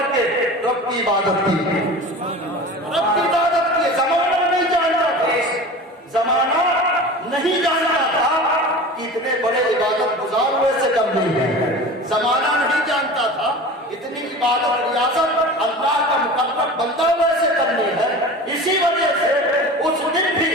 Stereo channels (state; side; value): normal; both; correlation 0.35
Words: کے رب کی عبادت کی. رب کی عبادت کی. زمانہ نہیں جانتا تھا, زمانہ نہیں جانتا تھا کہ اتنے بڑے عبادت گزار ویسے کرنی ہے. زمانہ نہیں جانتا تھا اتنی عبادت ریاضت اللہ کا مقرب بندہ ویسے کرنی ہے. اسی وجہ سے اس دن بھی